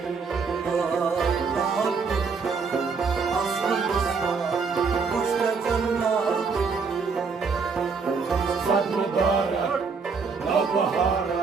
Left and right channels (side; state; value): left; quieter; 5.1 dB